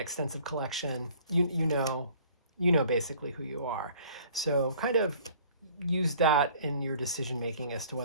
collection. You know basically who you are. So kind of use that in your decision-making as to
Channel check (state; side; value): inverted; both; correlation -0.53